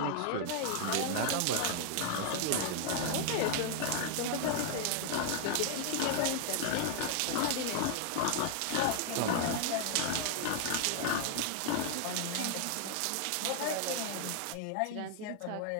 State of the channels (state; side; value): different; both; correlation 0.00